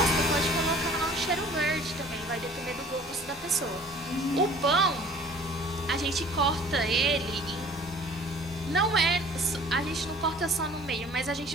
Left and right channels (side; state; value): both; normal; correlation 0.51